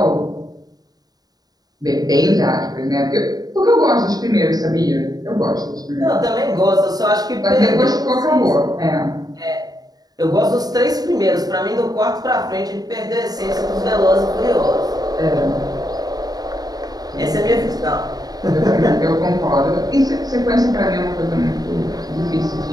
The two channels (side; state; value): left; late; 0.19 ms